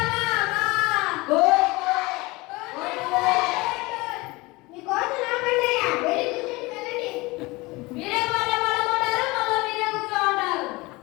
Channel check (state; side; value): quieter; right; 22.8 dB